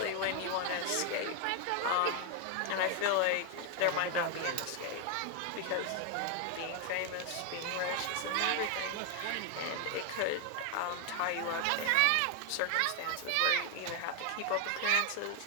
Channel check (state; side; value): different; both; correlation 0.00